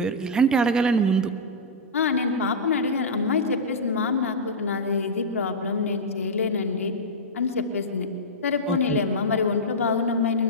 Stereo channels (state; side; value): normal; both; correlation -0.09